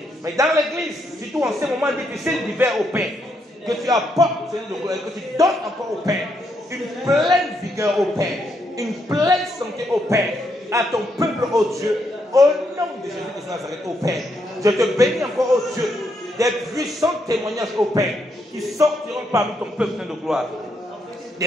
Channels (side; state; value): both; normal; correlation 0.77